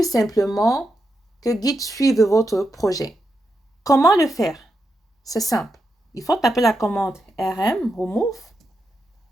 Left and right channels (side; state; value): both; normal; correlation 0.85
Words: simplement que Git suive votre projet. Comment le faire? C'est simple. Il faut taper la commande rm remove